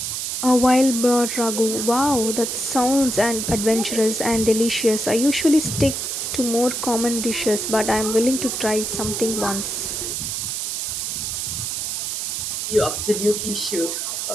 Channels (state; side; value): noise; right; hiss, 3 dB below the sound